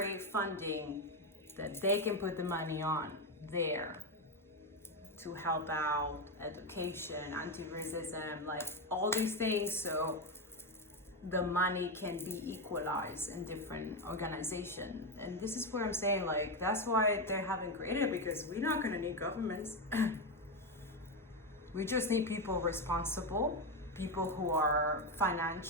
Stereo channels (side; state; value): both; normal; correlation 0.10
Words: funding that they can put the money on there to help out education, anti-racism, like all these things, so the money can be equalized in different organizations? And this is what I'm saying, like, that's why they haven't created it, because we're not going to need governments. We just need people responsible, people who are